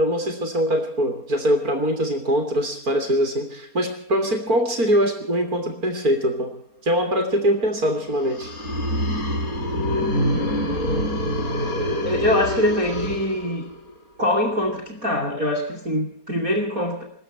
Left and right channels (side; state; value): left; late; 4.3 ms